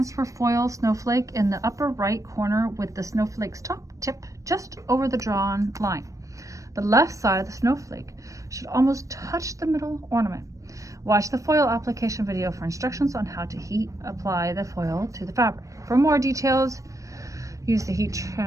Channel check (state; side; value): late; left; 0.16 ms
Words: foil snowflake in the upper right corner with the snowflake's top tip just over the drawn line. The left side of the snowflake should almost touch the middle ornament. Watch the foil application video for instructions on how to heat apply the foil to the fabric. For more details, use the heat